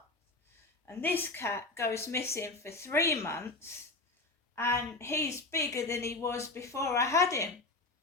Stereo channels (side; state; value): right; quieter; 3.1 dB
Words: And this cat goes missing for 3 months and he's bigger than he was before I had him.